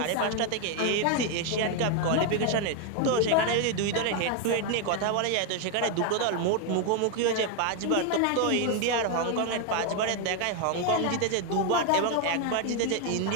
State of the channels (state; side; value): different; both; correlation 0.01